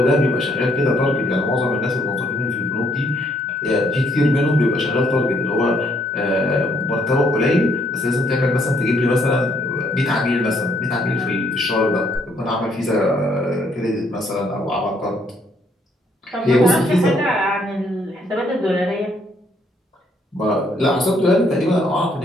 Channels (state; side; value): normal; both; correlation 0.70